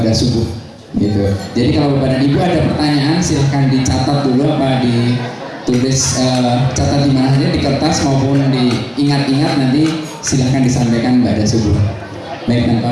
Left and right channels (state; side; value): identical; both; correlation 1.00